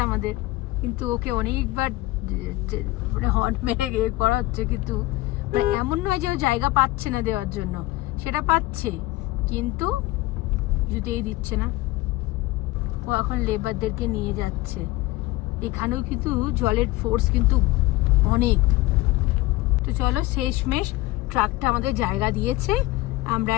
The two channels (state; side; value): quieter; right; 18.9 dB